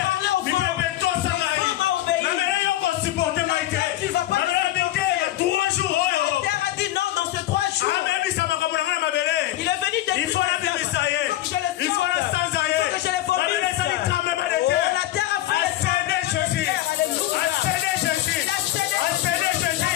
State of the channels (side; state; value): right; quieter; 14.6 dB